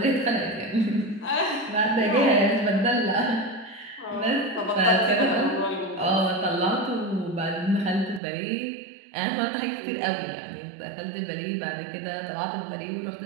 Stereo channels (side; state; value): left; drops out; at 8.2 s